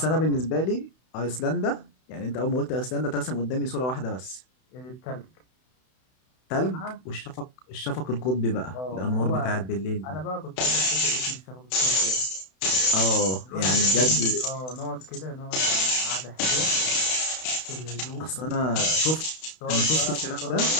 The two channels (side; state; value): right; late; 32 ms